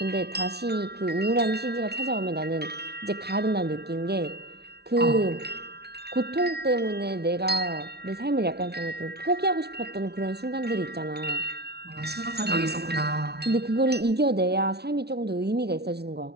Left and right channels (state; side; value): late; left; 0.48 ms